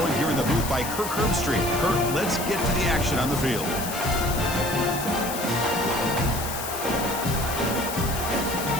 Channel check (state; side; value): noise; left; hiss, 7 dB below the sound